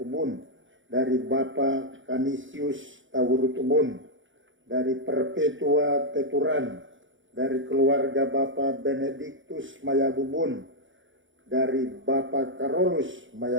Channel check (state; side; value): late; left; 0.56 ms